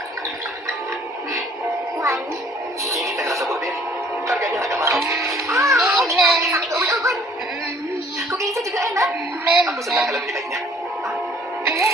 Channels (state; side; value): normal; both; correlation 0.57